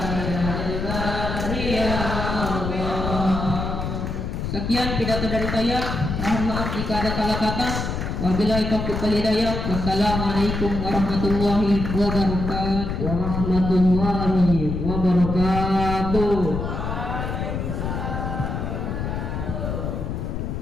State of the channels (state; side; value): noise; left; rumble, 3 dB below the sound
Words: Sekian pidato dari saya. Mohon maaf jika ada salah kata. Wabillahi taufiq wal hidayah. Wassalamualaikum warahmatullahi wabarakatuh. Warahmatullahi wabarakatuh.